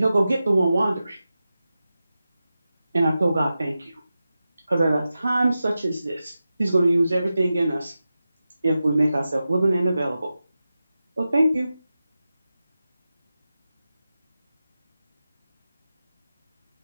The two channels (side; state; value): both; inverted; correlation -0.93